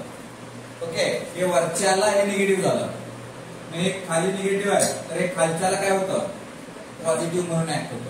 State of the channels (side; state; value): both; identical; correlation 1.00